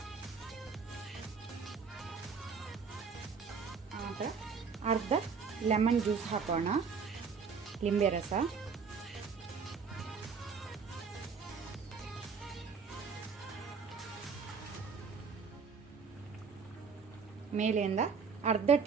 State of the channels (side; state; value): left; quieter; 5.6 dB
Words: ಆನಂತರ ಅರ್ಧ ಲೆಮನ್ ಜ್ಯೂಸ್ ಹಾಕೋಣ, ಲಿಂಬೆ ರಸ. ಮೇಲೆಯಿಂದ ಅರ್ಧ